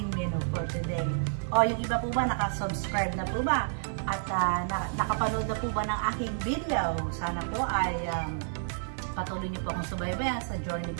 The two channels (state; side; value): silent; left; digital silence